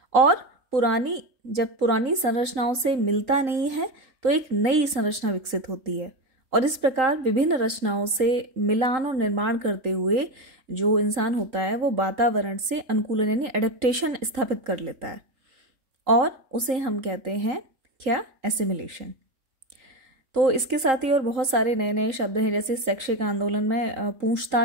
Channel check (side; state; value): left; late; 3.9 ms